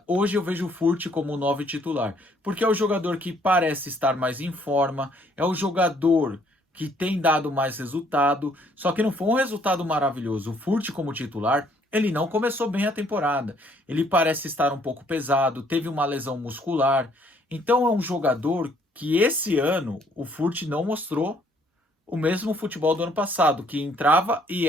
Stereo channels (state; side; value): normal; both; correlation 0.64